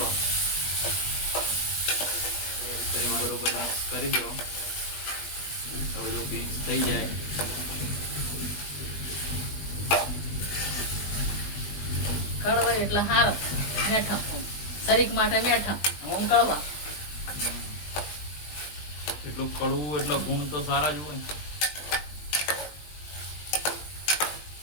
બરોબર મિક્સ કરી દો. તો બધું મિક્સ થઈ જાય. કડવા એટલે હાર મેઠા શરીર માટે મેઠા હું કડવા. એટલું કડવું એટલો ગુણ તો સારા જ હોય.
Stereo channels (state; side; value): late; right; 20 ms